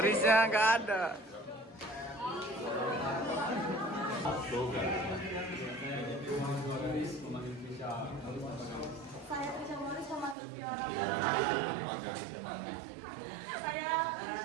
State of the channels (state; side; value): drops out; left; at 10.4 s